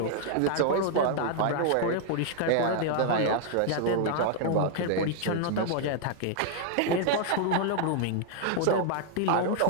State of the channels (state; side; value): different; both; correlation 0.00